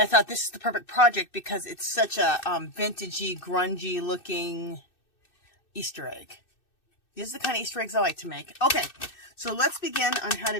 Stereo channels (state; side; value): late; right; 2.6 ms